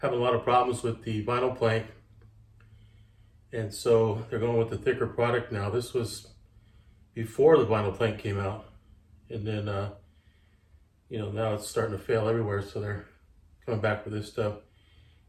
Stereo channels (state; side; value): identical; both; correlation 1.00